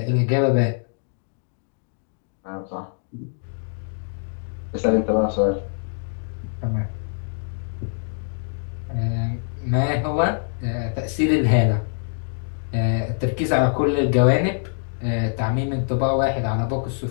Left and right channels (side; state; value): right; silent; digital silence